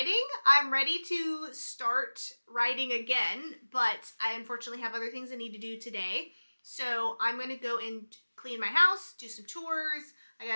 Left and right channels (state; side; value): inverted; both; correlation -1.00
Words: I'm ready to start writing again, but I unfortunately have other things I need to do today. So I'm going to go and clean my house, do some chores. I